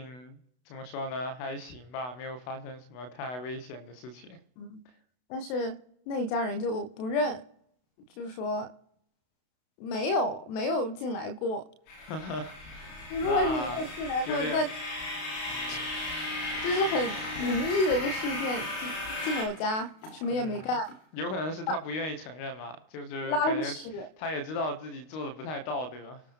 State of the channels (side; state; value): right; late; 32 ms